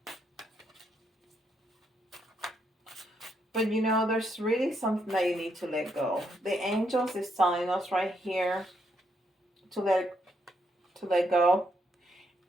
But you know, there's really something that you need to let go. The angels is telling us right here to let go.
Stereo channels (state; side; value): normal; both; correlation 0.77